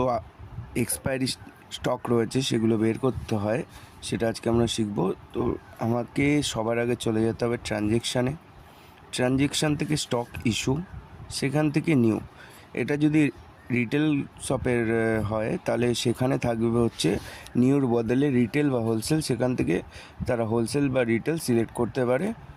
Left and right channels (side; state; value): both; identical; correlation 1.00